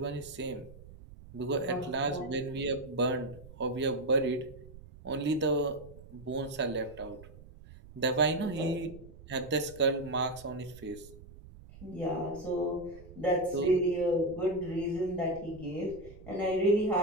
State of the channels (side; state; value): right; noise; rumble, 18 dB below the sound